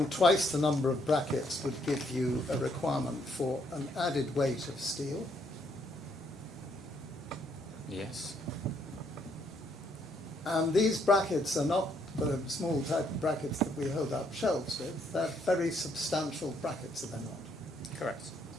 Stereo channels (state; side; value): normal; both; correlation 0.71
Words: twice the number of brackets would give you a requirement for an added weight of steel. Yes. And these brackets are not the small type of brackets that we hold up shelves with. They're very substantial brackets, are they not? Correct.